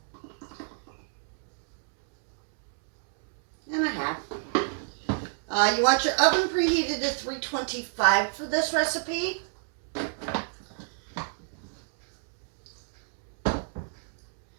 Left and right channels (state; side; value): silent; left; digital silence